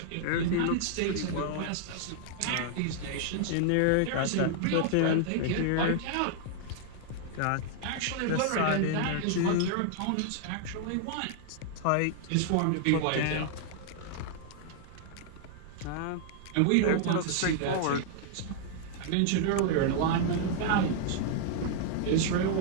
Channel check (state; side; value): different; both; correlation 0.00